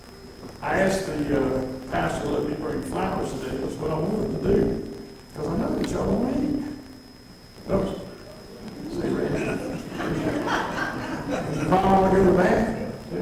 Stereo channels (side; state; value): both; identical; correlation 1.00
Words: I asked the pastor to let me bring flowers today. That's what I wanted to do, because I know that y'all don't eat. Oops. See, Randy? You probably want to go to the bathroom.